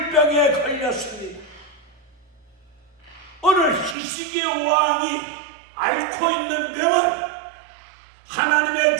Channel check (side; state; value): left; drops out; at 4.0 s